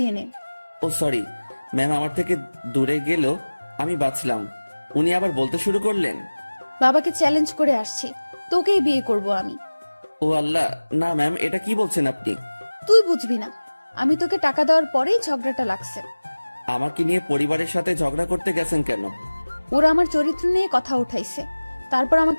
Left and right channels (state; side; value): inverted; both; correlation -1.00